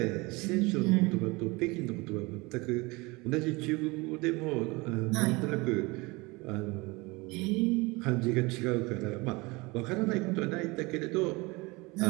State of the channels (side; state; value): left; quieter; 24.7 dB